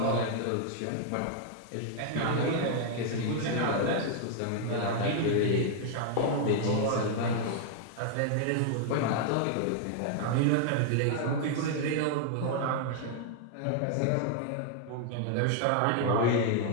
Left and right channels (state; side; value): different; both; correlation 0.00